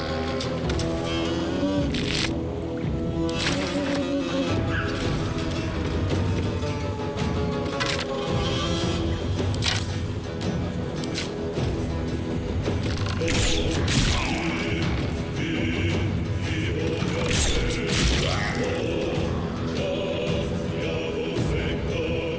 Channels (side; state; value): both; identical; correlation 1.00